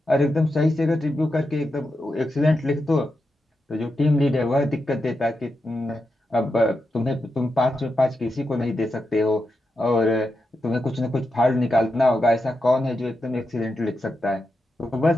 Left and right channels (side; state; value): both; normal; correlation 0.87